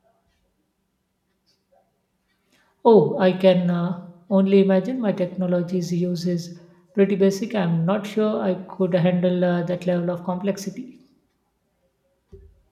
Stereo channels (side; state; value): both; identical; correlation 1.00